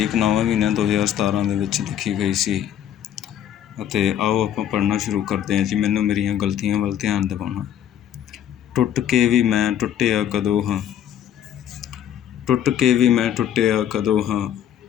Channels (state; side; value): quieter; right; 10.2 dB